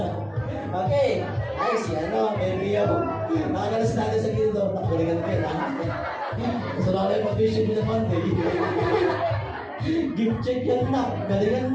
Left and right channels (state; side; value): identical; both; correlation 1.00